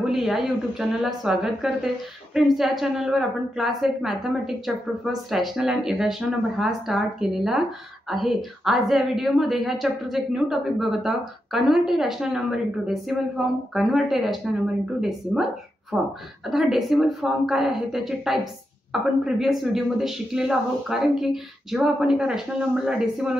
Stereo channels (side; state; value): both; normal; correlation 0.86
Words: या यूट्यूब चॅनलला स्वागत करते. फ्रेंड्स, या चॅनलवर आपण class 8 mathematics chapter first rational and irrational number हा स्टार्ट केलेला आहे. आज या व्हिडिओमध्ये ह्या चॅप्टरचं एक न्यू टॉपिक बघत आहोत. Convert a rational number into decimal form. Convert a rational number into decimal form. आता हा डेसिमल फॉर्म काय आहे, त्याचे टाइप्स आपण प्रिव्हियस व्हिडिओमध्ये शिकलेलो आहोत. कारण की जेव्हा आपण एका रॅशनल नंबरला